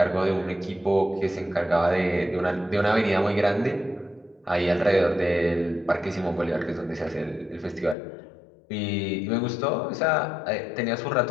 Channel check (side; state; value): right; drops out; at 8.0 s